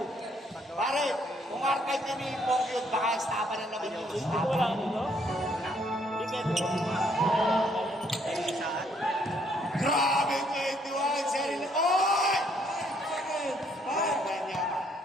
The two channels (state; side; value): normal; both; correlation 0.67